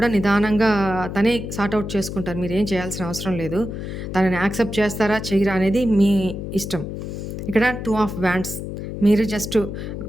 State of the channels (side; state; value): left; noise; hum, 6 dB below the sound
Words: నిదానంగా తనే సార్ట్ ఔట్ చేసుకుంటారు. మీరేం చేయాల్సిన అవసరం లేదు. తనని యాక్సెప్ట్ చేస్తారా, చెయ్యరా అనేది మీ ఇష్టం. ఇక్కడ 2 ఆఫ్ వ్యాండ్స్. మీరు just